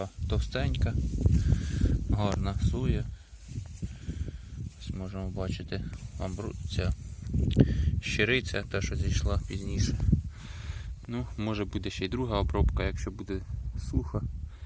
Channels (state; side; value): identical; both; correlation 1.00